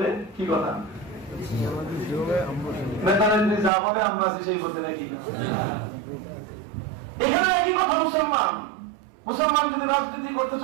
কি কথা, নেতা নেত্রী যা বলে আমরা আছি সেই পথে নাকি? এখানে একই কথা। মুসলমান যদি রাজনীতি করতে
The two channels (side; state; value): left; drops out; at 3.7 s